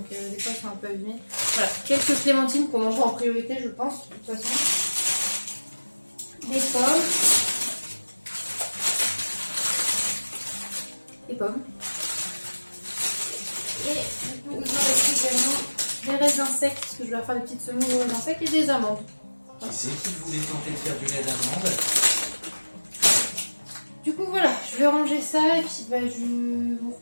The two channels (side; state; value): both; inverted; correlation -1.00